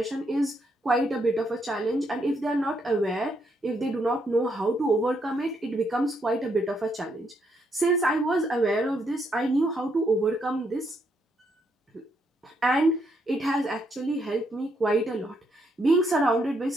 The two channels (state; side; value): normal; both; correlation 0.76